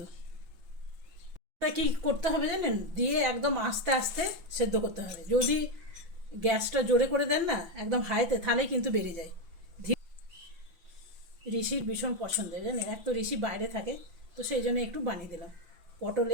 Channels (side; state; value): left; late; 5.9 ms